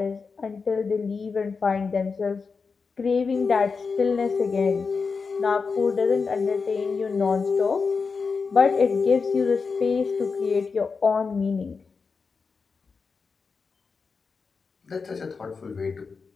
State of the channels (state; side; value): quieter; right; 4.9 dB